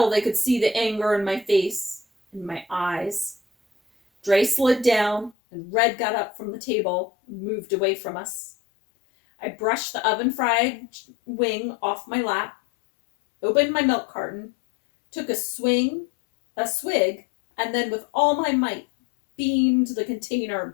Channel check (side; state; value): right; drops out; at 5.4 s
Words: they could see the anger in my face, in my eyes. Dre slid down, and Red got up from the table and moved away from us. I brushed the oven-fried wing off my lap, opened my milk carton, took a swig, and then with all my might, beamed the container at